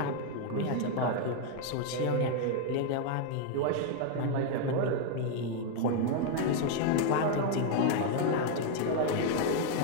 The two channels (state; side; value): different; both; correlation 0.00